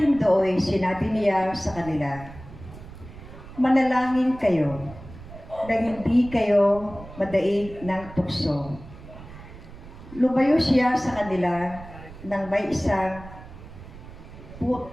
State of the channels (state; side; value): noise; right; rumble, 16 dB below the sound